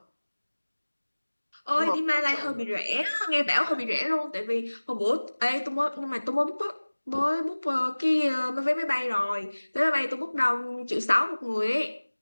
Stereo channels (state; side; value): inverted; both; correlation -1.00